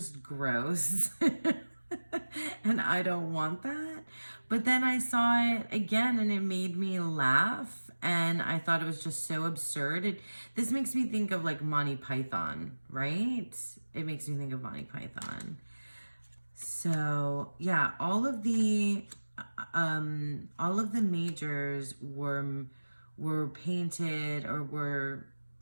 gross. And I don't want that. But then I saw it again and it made me laugh. And I thought it was just so absurd. This makes me think of like Monty Python, right? It makes me think of Monty Python. So yeah, all of the majors were painted or were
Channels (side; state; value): both; inverted; correlation -1.00